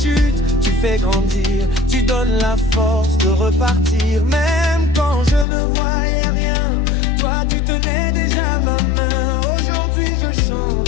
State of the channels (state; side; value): drops out; right; at 5.5 s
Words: tu fais grandir. Tu donnes la force de repartir. Même quand je ne voyais rien, toi tu tenais déjà ma main. Aujourd'hui je